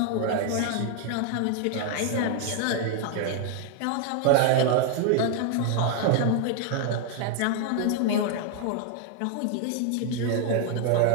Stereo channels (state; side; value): different; both; correlation 0.00